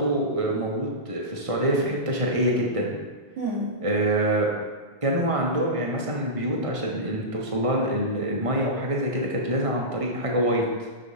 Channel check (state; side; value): late; left; 1.6 ms